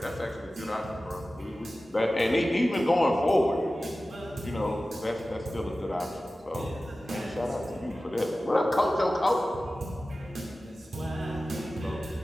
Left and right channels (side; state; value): both; normal; correlation 0.96